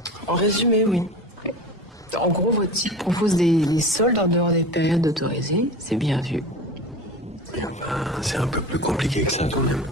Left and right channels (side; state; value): both; normal; correlation 0.33